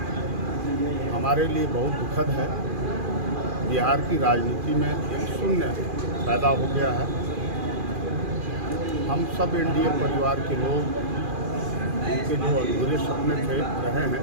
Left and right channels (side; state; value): left; late; 2.4 ms